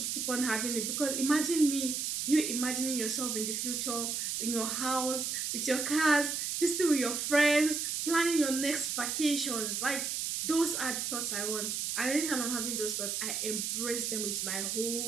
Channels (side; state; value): right; noise; hiss, 1 dB below the sound